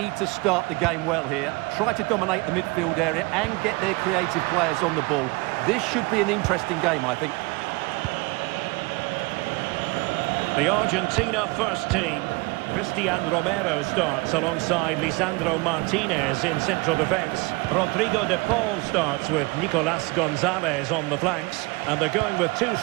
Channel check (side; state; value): left; quieter; 25.7 dB